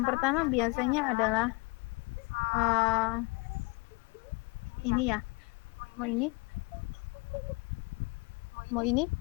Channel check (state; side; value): quieter; right; 28.0 dB